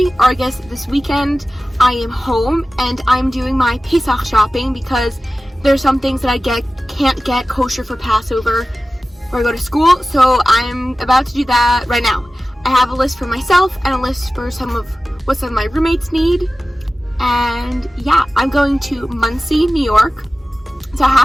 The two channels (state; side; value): normal; both; correlation 0.96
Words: or I guess this weekend, I am home and I'm doing my Pesach shopping because there's some things that I can't get kosher for Passover where I go to school, so I'm about to do that right now. I have a list for myself and a list for some of what some of my roommates need. And yeah, I'm going to Muncie, New York. It's a